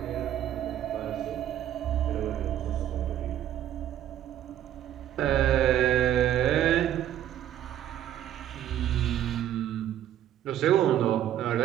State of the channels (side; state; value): left; quieter; 11.4 dB